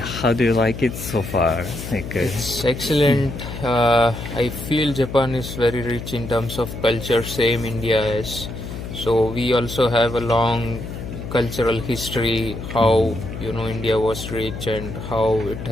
how do you like it so far? It's excellent. I feel Japan is very rich in terms of culture, same India is. So we also have a long cultural history, how India was rich and how it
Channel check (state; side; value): noise; left; hum, 9 dB below the sound